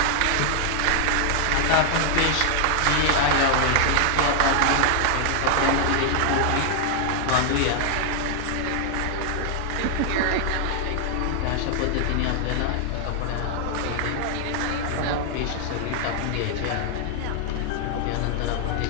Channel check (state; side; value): different; both; correlation 0.00